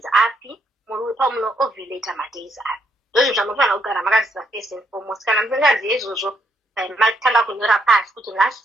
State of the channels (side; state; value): both; normal; correlation 0.75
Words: api, muri pamuno ovulate madays api. Ndozvo zvanofanira kugara makaziva first and foremost. Kana musingazive izvozvo matanga kunyora pasi kuti